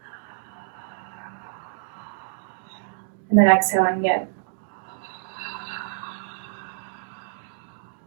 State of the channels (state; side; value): silent; left; digital silence